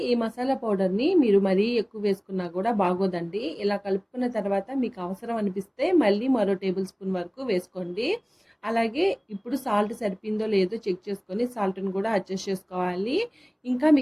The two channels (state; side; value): identical; both; correlation 1.00